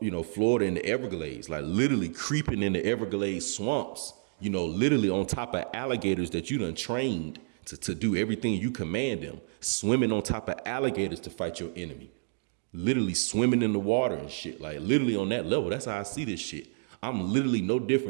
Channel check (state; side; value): silent; left; digital silence